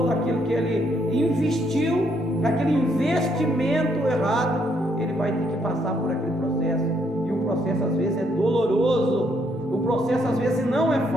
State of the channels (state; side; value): normal; both; correlation 0.72